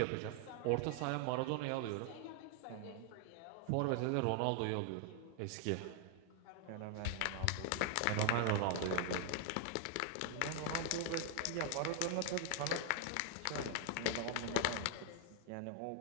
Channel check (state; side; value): different; both; correlation 0.00